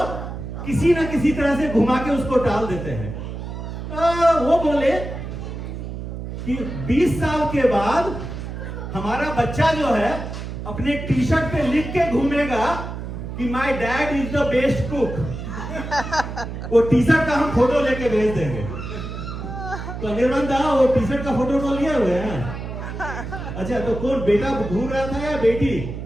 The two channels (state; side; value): noise; right; hum, 7 dB below the sound